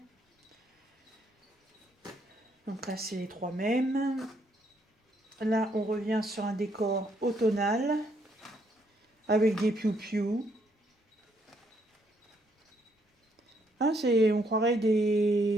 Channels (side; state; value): both; normal; correlation 0.72